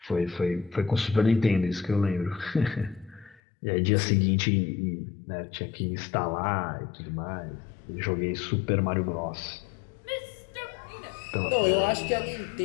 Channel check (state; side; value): drops out; right; at 3.4 s